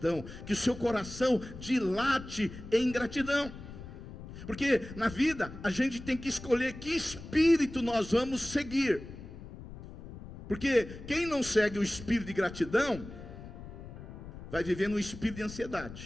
que o seu coração dilate em gratidão. Porque na vida a gente tem que escolher que espírito nós vamos seguir. Porque quem não segue o espírito de gratidão vai viver no espírito de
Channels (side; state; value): left; noise; rumble, 13 dB below the sound